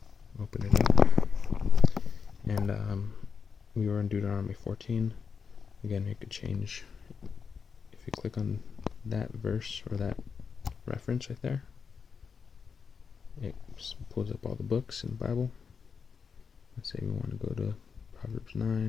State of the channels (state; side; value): quieter; right; 5.9 dB